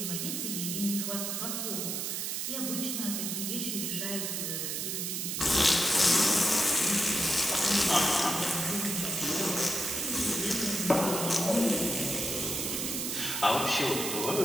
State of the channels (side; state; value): right; noise; hiss, 2 dB below the sound